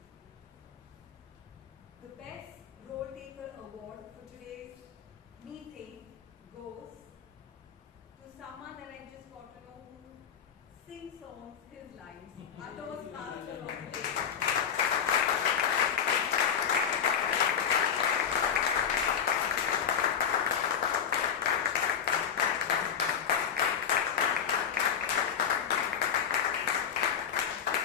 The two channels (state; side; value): quieter; right; 7.8 dB